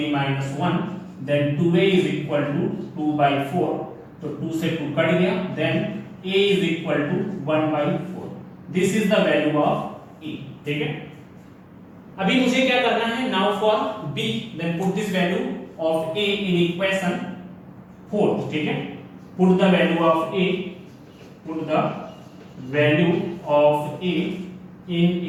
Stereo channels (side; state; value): both; identical; correlation 1.00